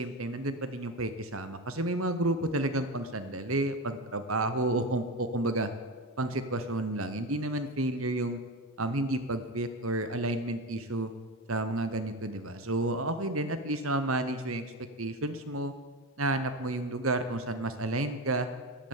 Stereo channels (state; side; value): normal; both; correlation 0.21